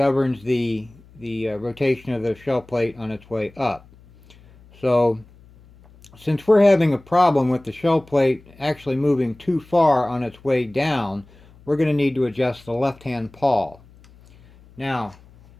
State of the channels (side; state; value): left; noise; hum, 25 dB below the sound